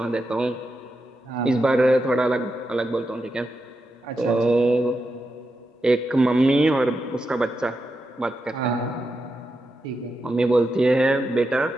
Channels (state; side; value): normal; both; correlation 0.87